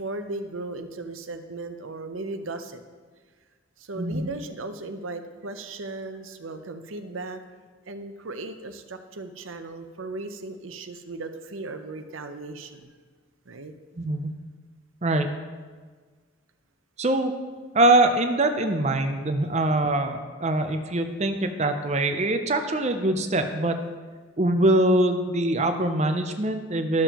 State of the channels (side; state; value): both; normal; correlation 0.30